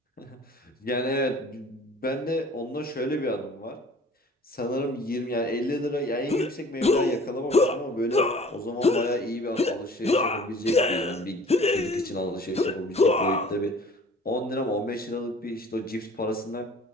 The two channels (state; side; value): normal; both; correlation 0.49